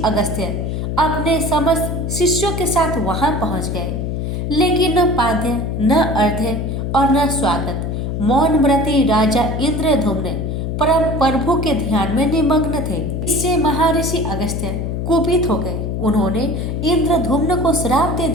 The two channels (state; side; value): noise; left; hum, 2 dB below the sound